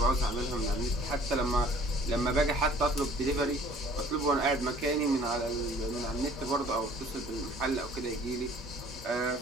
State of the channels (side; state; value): both; normal; correlation 0.53